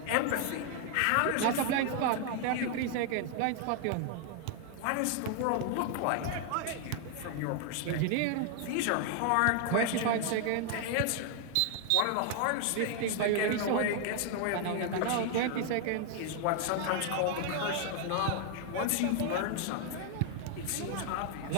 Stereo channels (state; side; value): different; both; correlation 0.00